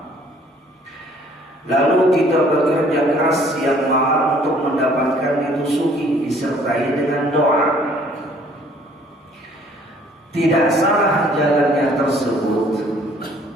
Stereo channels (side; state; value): both; normal; correlation 0.58